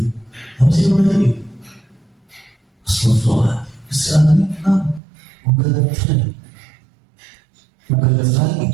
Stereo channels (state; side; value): drops out; left; at 5.0 s